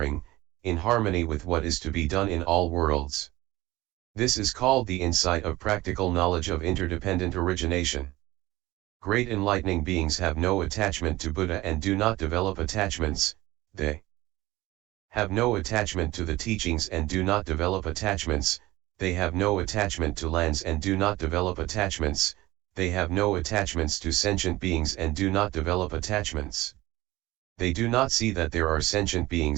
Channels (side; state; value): left; quieter; 18.5 dB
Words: in harmony with what is to be done in all worlds. This is called the insight of practical knowledge of interdependent origination. Great enlightening beings have no attachment to Buddha and do not develop attachments, they have no attachment to the teachings and do not develop attachments, they have no attachment to lands and do not develop attachments, they have no attachments to sentient beings and do not develop attachments. They do not see that there are sentient